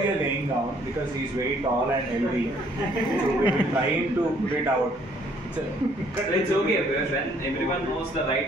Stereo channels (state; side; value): normal; both; correlation 0.63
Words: laying down because he is very tall and healthy. So we will try him to put it out. It's okay because when everyone knows the